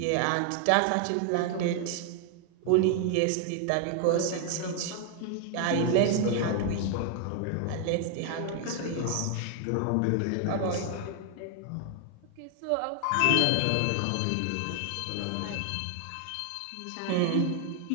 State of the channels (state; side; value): different; both; correlation 0.00